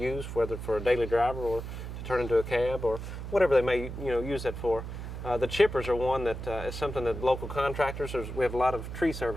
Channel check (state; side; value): noise; right; hum, 8 dB below the sound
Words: whether for a daily driver or to turn into a cab or whatever they may, use that for. The chippers are one that is something that local contractors, we have a lot of tree